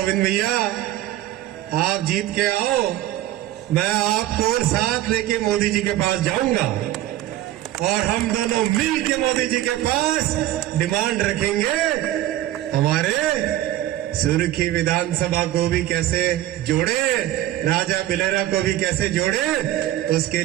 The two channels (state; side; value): quieter; left; 14.3 dB